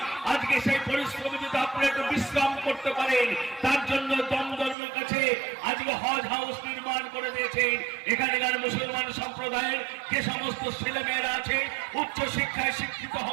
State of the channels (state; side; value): drops out; left; at 4.8 s